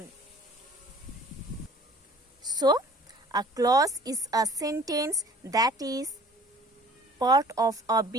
So, a clause is a sentence that is part of a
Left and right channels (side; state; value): both; normal; correlation 0.51